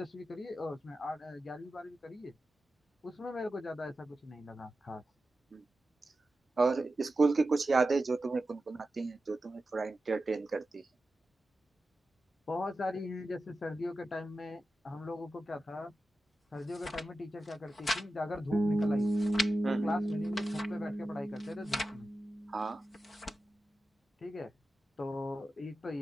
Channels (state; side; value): normal; both; correlation 0.92